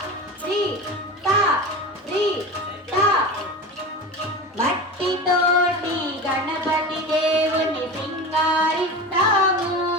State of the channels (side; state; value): both; normal; correlation 0.28